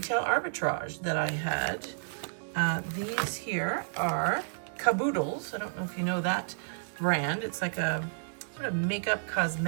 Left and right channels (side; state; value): left; silent; digital silence